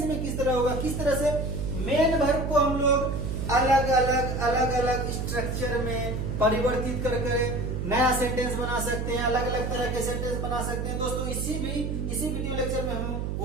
में किस तरह होगा, किस तरह से मेन वर्ब को हम लोग अलग अलग स्ट्रक्चर में परिवर्तित कर नया सेंटेंस बना सकते हैं, अलग अलग तरह के सेंटेंस बना सकते हैं। दोस्तों इसी वीडियो लेक्चर में हम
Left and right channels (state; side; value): noise; right; hum, 2 dB below the sound